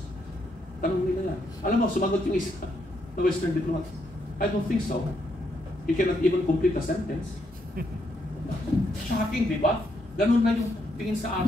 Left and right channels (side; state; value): both; normal; correlation 0.77